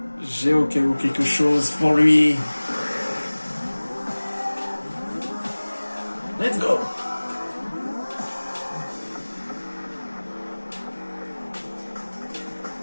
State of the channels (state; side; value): inverted; both; correlation -1.00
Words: J'ai au cas où quelque chose pour lui. Let's go.